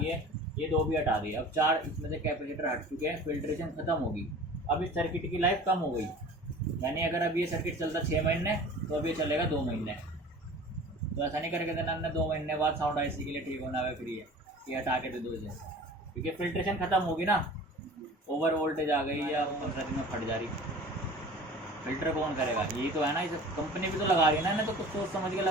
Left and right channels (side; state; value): both; normal; correlation 0.42